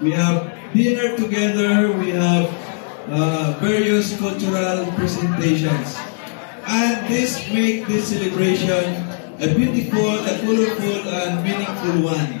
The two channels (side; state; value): right; silent; digital silence